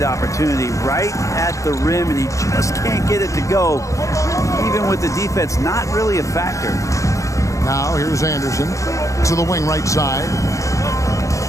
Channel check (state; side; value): late; right; 0.15 ms